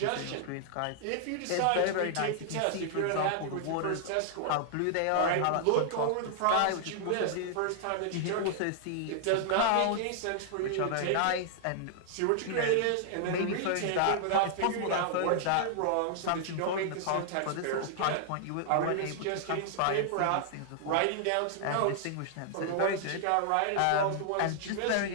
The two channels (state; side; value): different; both; correlation -0.01